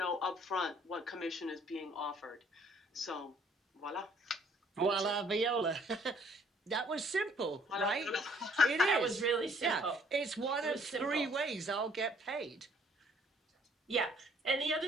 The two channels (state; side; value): normal; both; correlation 0.61